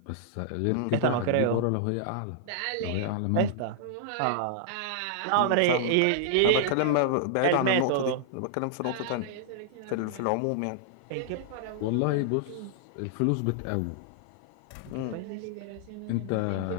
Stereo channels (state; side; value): different; both; correlation -0.01